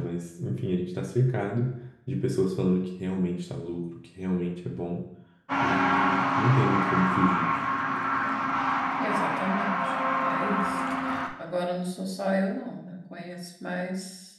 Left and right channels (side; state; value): both; identical; correlation 1.00